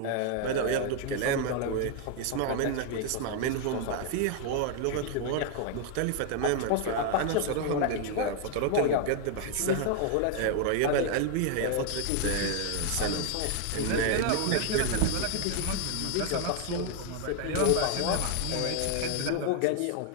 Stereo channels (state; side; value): different; both; correlation 0.00